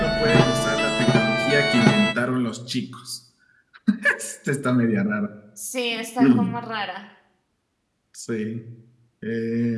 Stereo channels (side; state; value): both; identical; correlation 1.00